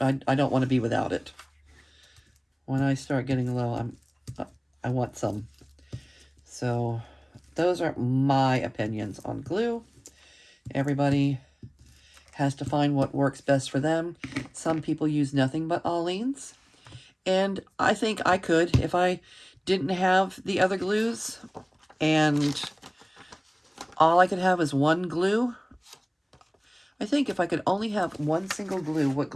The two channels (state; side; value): identical; both; correlation 1.00